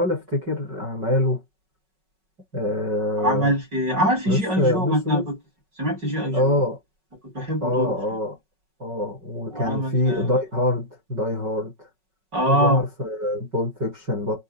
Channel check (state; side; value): late; left; 5.4 ms